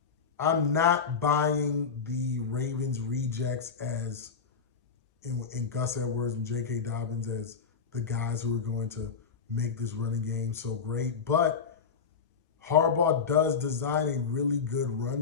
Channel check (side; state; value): right; quieter; 5.9 dB